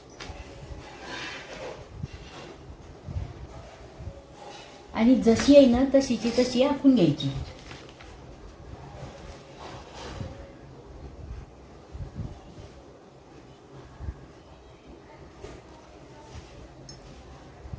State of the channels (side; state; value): both; identical; correlation 1.00